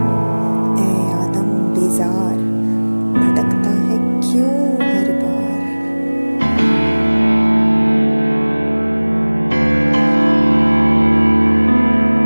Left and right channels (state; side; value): inverted; both; correlation -1.00